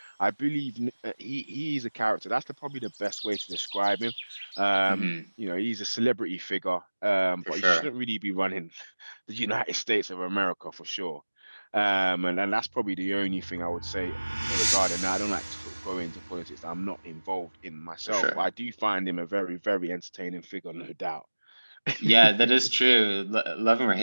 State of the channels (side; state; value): both; inverted; correlation -1.00